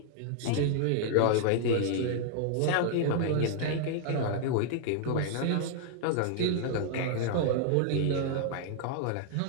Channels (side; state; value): both; different; correlation 0.00